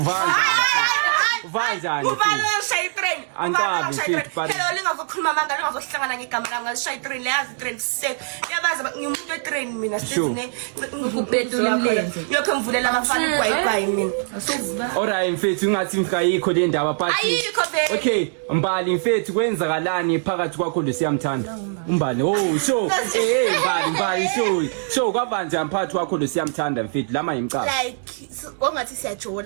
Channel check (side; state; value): left; silent; digital silence